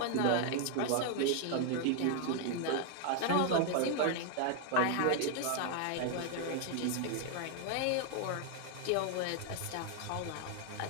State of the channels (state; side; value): different; both; correlation 0.00